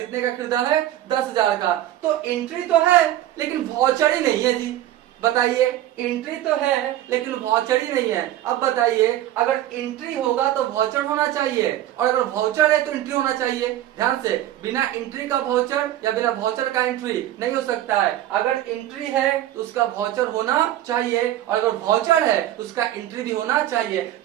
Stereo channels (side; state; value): left; quieter; 13.3 dB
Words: का खरीदा है, 10,000 का। तो एंट्री तो है लेकिन वाउचर ही नहीं है जी। बताइए एंट्री तो है लेकिन वाउचर ही नहीं है। अब बताइए अगर एंट्री होगा तो वाउचर होना चाहिए और अगर वाउचर है तो एंट्री होना चाहिए। ध्यान से, बिना एंट्री का वाउचर या बिना वाउचर का एंट्री नहीं हो सकता है। अगर एंट्री है तो उसका वाउचर होना चाहिए और अगर वाउचर है तो उसका एंट्री भी होना चाहिए।